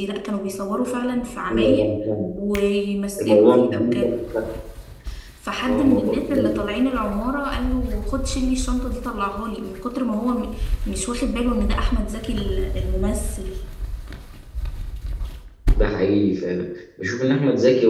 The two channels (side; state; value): both; identical; correlation 1.00